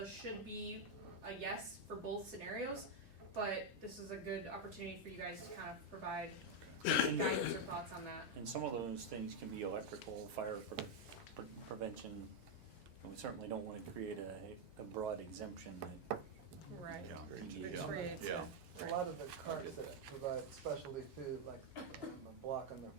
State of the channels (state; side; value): late; right; 3.2 ms